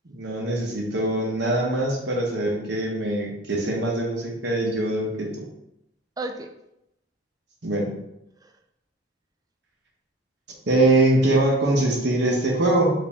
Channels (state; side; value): normal; both; correlation 0.39